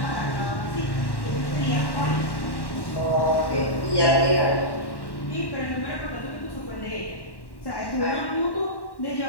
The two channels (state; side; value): late; right; 1.1 ms